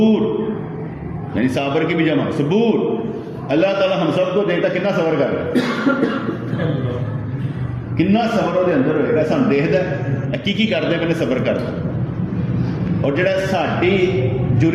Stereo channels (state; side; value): identical; both; correlation 1.00